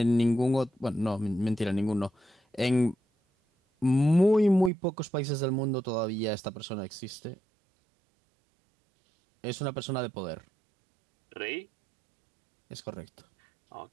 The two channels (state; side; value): drops out; left; at 4.7 s